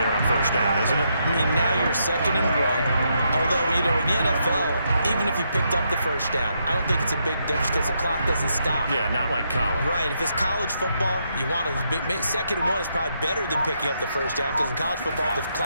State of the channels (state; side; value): inverted; both; correlation -0.78